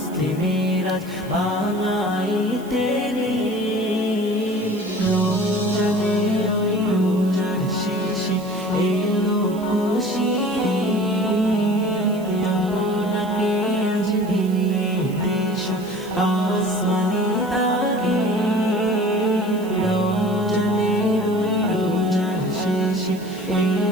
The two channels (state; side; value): noise; right; hiss, 22 dB below the sound